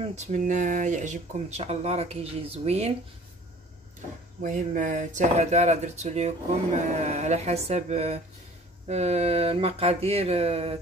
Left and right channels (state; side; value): normal; both; correlation 0.49